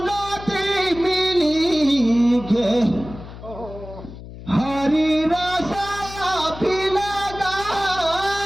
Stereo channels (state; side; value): noise; left; hum, 14 dB below the sound